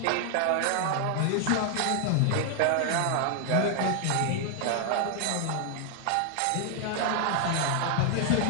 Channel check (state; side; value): different; both; correlation 0.00